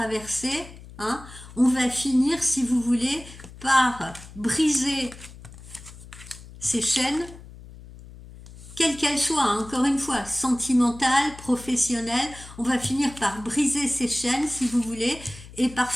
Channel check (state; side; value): noise; left; hum, 17 dB below the sound